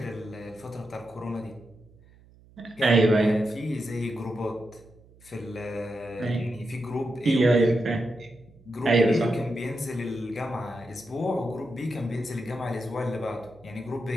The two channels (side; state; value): right; noise; hum, 26 dB below the sound